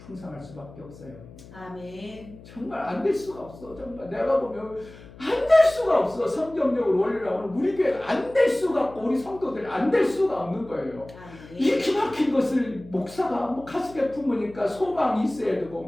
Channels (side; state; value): left; noise; hum, 19 dB below the sound